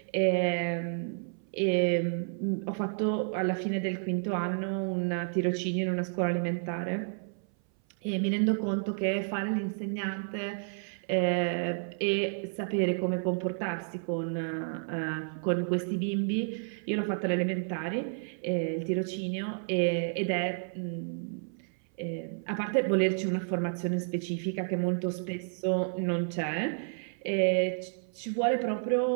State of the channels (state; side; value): silent; left; 57 dB below the other